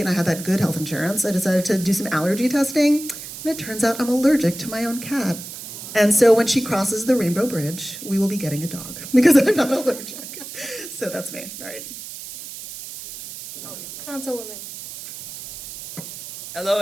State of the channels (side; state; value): right; noise; hiss, 11 dB below the sound